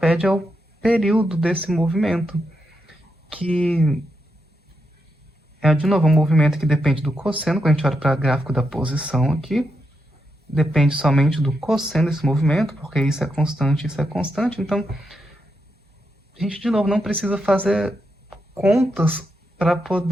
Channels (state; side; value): normal; both; correlation 0.84